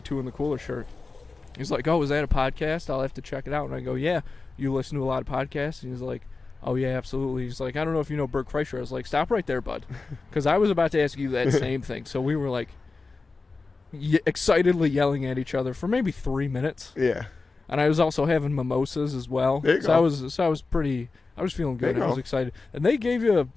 in the Cooler shirt. He's like, "Oh, is that a podcast? I'll have to check it out." And I go, "Yeah, you listen to a lot of podcasts?" And he's like, "Oh yeah, absolutely." He's like, "I don't know if you know Bert Kreischer." I was like, "Stop right there, bud," because I was about to ask you that same thing. So we were like excitedly yelling at each other for maybe 3 minutes. Yeah. And I was also having mimosas as well. There you so go. I was feeling good. There you I was go. excited. And they gave you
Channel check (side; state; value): right; quieter; 3.9 dB